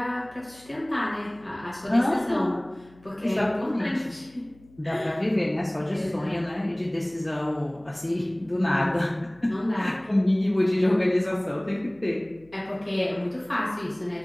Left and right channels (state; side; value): noise; left; hum, 26 dB below the sound